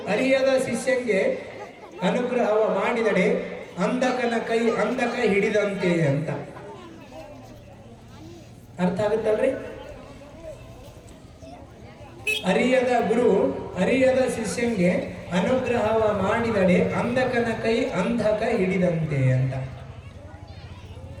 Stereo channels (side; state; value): both; identical; correlation 1.00